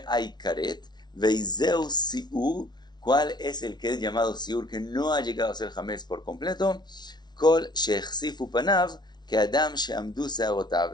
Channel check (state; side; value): late; right; 0.20 ms